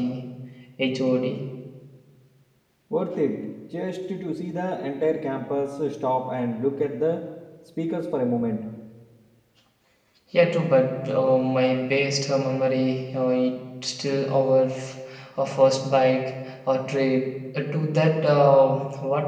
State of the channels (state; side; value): identical; both; correlation 1.00